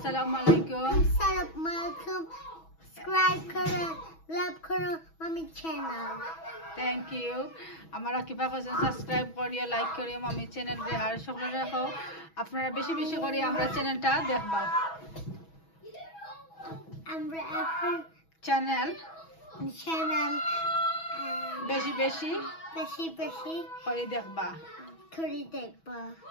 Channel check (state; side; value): late; right; 6.2 ms